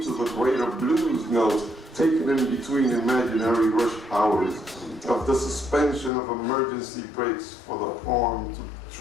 to the greater blues notes, taken in between imaginary rush hours, of the suspension of emergency brakes for the poem to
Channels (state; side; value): drops out; right; at 6.1 s